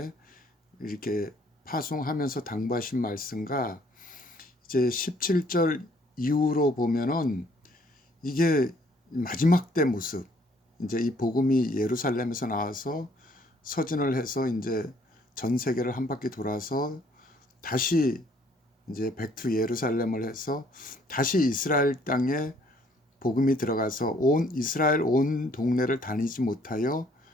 이렇게 파송하면서 당부하신 말씀과 이제 17절 이후로 보면은 이게 마지막 때 모습, 이제 이 복음이 예루살렘에서 나와서 서진을 해서 이제 전 세계를 한 바퀴 돌아서 다시 이제 백투 예루살렘을 해서 다시 이스라엘 땅에 복음이 들어가서 온 이스라엘 온 동네를 다니지 못하여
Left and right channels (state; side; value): normal; both; correlation 0.63